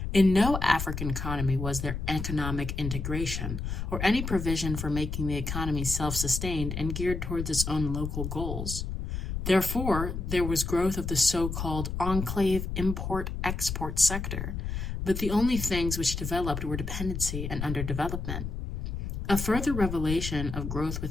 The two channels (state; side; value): noise; left; rumble, 4 dB below the sound